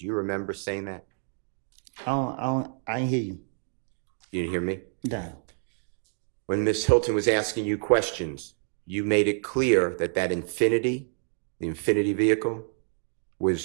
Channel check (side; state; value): left; silent; 59 dB below the other